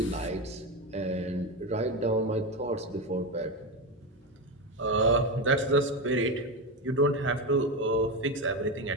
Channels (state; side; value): normal; both; correlation 0.15